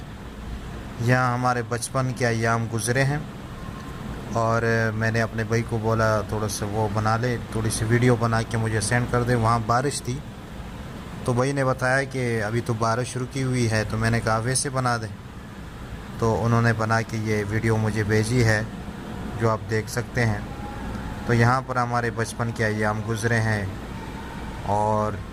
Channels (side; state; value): both; identical; correlation 1.00